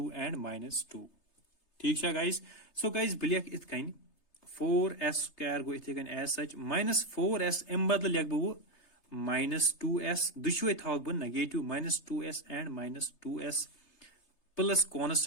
and -2 ठीक है गाइस. सो गाइस बिलियक इत कन 4s स्क्वायर गो इथे कन एज सच -4s एम बदल लिख बो -2s दुशवे थाव बो negative -2s and -2s plus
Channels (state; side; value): late; right; 3.3 ms